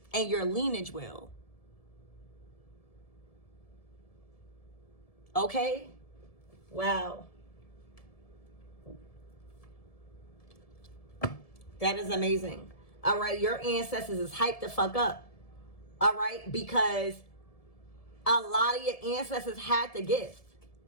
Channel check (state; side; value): late; right; 1.7 ms